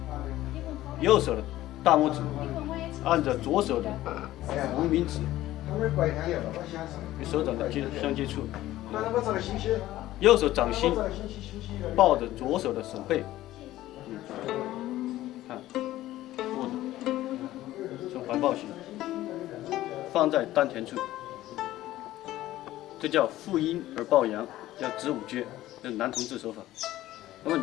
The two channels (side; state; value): right; quieter; 15.1 dB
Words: 右手的大拇指按着左手的无名指与手掌的相接触，右手掌心抱着左手的手背，看握着，呈环抱形，放在丹田处，这叫负阴而抱阳，叫子午撅，这是男同志手法。那么